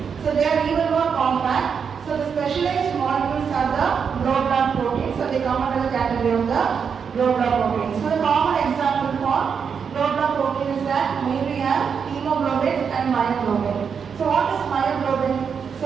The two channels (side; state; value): left; quieter; 6.6 dB